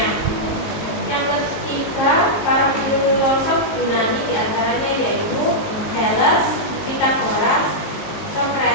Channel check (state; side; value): late; right; 19 ms